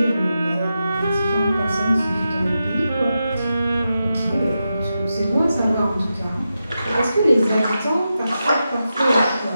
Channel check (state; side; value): inverted; both; correlation -0.89